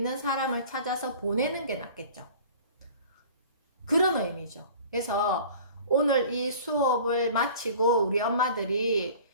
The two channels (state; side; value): inverted; both; correlation -0.44